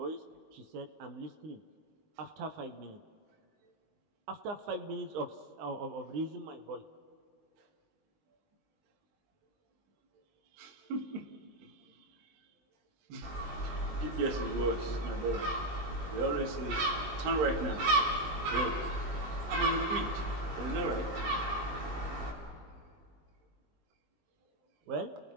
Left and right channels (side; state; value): left; late; 19 ms